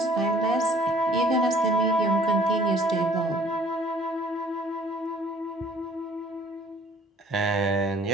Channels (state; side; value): normal; both; correlation 0.56